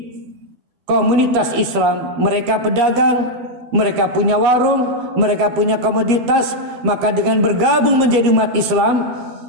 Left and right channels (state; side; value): late; left; 12 ms